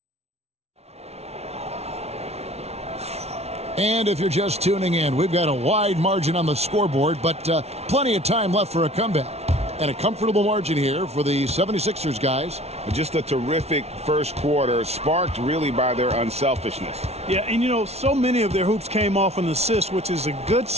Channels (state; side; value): late; left; 0.31 ms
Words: And if you're just tuning in, we've got a wide margin on the scoreboard, but plenty of time left for a comeback. And a comfortable margin here for the 76ers guys. Just a terrific first quarter, sparked really by their unselfishness. Yeah, and you know, so many of their hoops came off an assist, which is a good